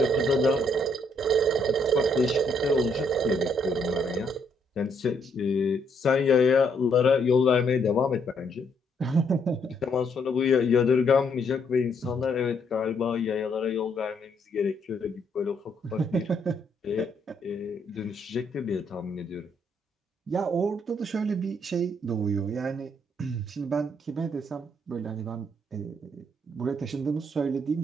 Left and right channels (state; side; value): normal; both; correlation 0.71